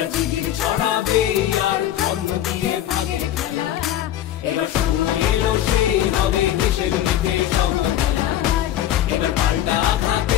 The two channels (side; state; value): right; quieter; 12.1 dB